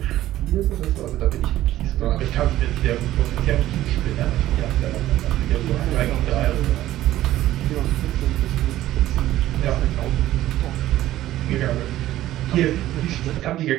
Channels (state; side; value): quieter; left; 14.3 dB